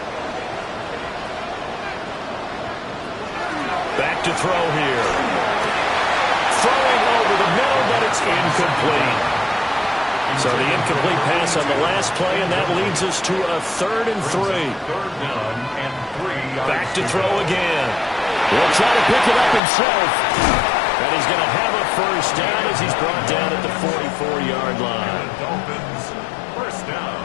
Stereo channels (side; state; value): right; drops out; at 19.6 s